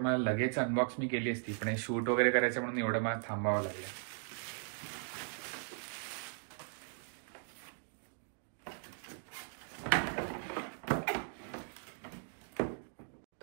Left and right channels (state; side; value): silent; left; 52 dB below the other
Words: मला लगेच अनबॉक्स मी केली असती, पण शूट वगैरे करायचं म्हणून एवढं मला थांबावं लागलं.